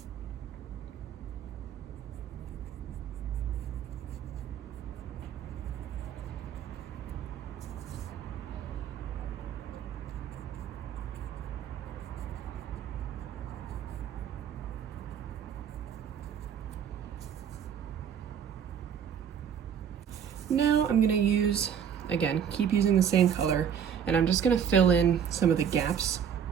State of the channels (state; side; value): quieter; left; 8.1 dB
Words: Now I'm gonna use, again, keep using the same color, and I'm just gonna fill in some of the gaps